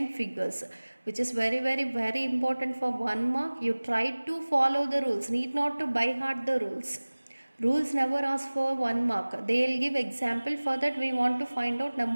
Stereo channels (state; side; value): inverted; both; correlation -1.00